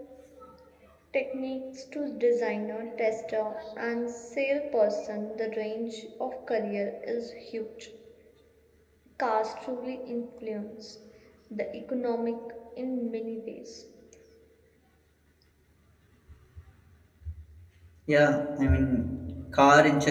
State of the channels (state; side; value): identical; both; correlation 1.00